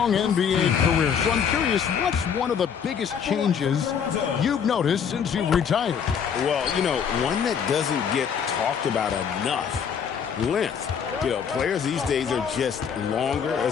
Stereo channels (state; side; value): quieter; right; 7.3 dB